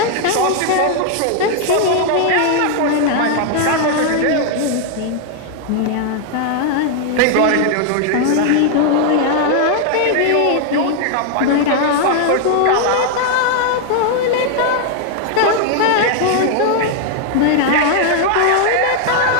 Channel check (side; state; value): both; different; correlation 0.00